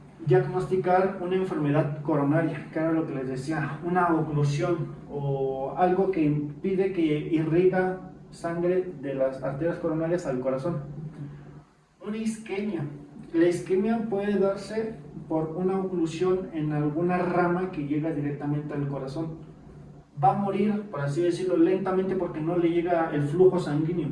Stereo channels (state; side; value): identical; both; correlation 1.00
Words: diagnosticar una enfermedad coronaria, que era lo que les decía, una oclusión o algo que impide que irriga sangre de las arterias coronarias al corazón. Una isquemia. La isquemia puede darse por una oclusión en alguna rama que llega directamente al corazón. Va a morir, por así decirlo, lentamente porque no le llega el flujo sanguíneo.